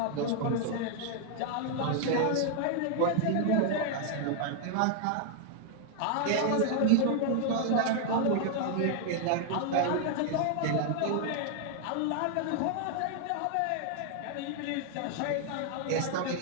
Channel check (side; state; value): both; different; correlation 0.00